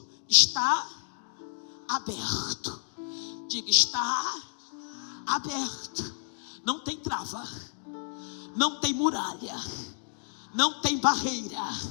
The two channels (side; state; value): right; silent; digital silence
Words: está aberto. Diga, está aberto. Não tem trava, não tem muralha, não tem barreira.